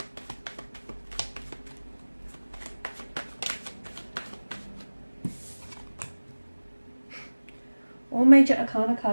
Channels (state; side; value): inverted; both; correlation -1.00